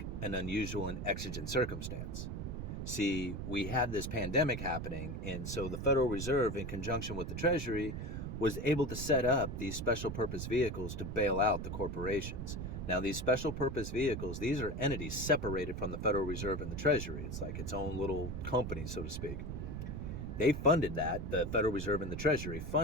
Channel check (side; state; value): right; noise; rumble, 5 dB below the sound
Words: an unusual and exigent circumstance. See, we had this pandemic happening, and so the Federal Reserve, in conjunction with the Treasury, was able to set up these special purpose vehicles to bail out the corporations. Now, these special purpose vehicles, these are entities separated from the Federal Reserve and the Treasury. It's like its own little company, so to speak. They funded that, the Federal Reserve and the Treasury